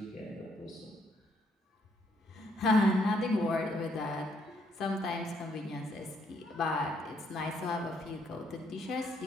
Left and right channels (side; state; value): both; normal; correlation 0.71